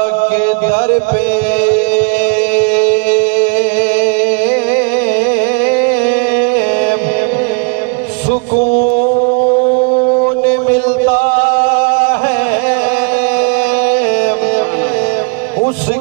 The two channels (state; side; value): quieter; left; 33.5 dB